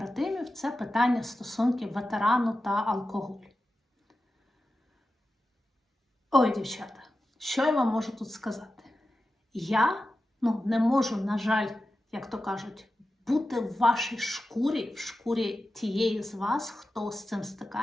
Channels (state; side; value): normal; both; correlation 0.92